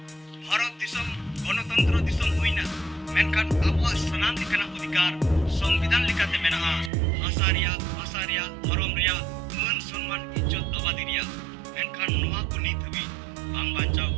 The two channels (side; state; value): left; drops out; at 6.9 s